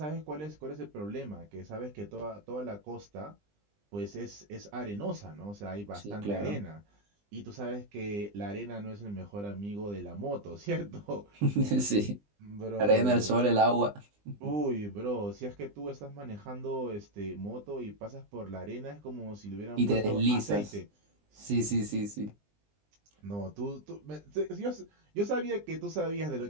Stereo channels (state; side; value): late; left; 20 ms